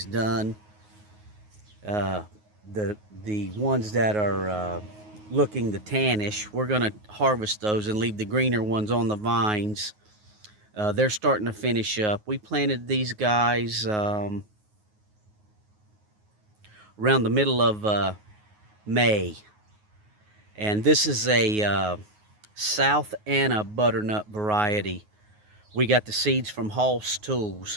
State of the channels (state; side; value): late; left; 9.5 ms